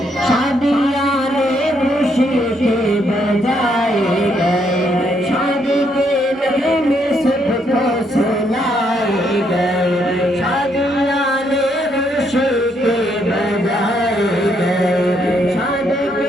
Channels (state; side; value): normal; both; correlation 0.74